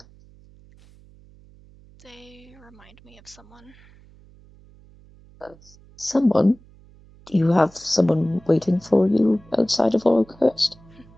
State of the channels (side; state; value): right; noise; hum, 25 dB below the sound